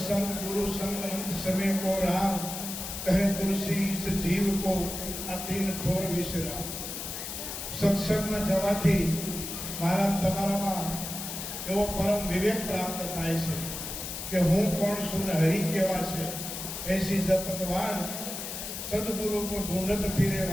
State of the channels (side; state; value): left; noise; hiss, 7 dB below the sound